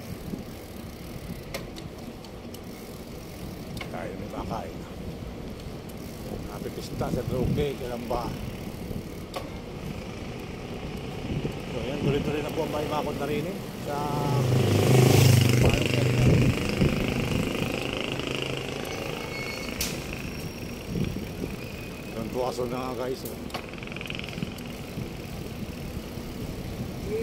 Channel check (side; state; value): both; identical; correlation 1.00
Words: Kaya may makain. Napipista sa droge, kailan ba? So yan, tuloy-tuloy na po ang bakod na rin sa doon po aso na nga guys.